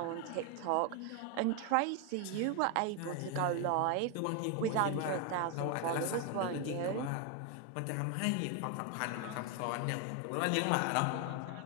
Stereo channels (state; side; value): different; both; correlation 0.01